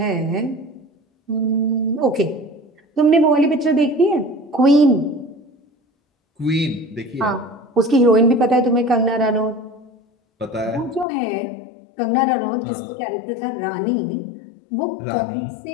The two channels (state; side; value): drops out; right; at 11.1 s